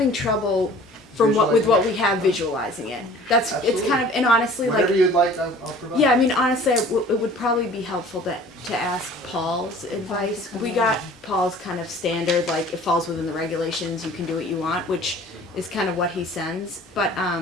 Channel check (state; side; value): normal; both; correlation 0.48